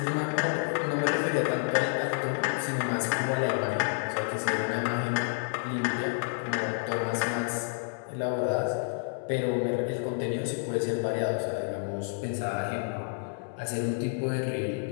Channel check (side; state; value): right; silent; 58 dB below the other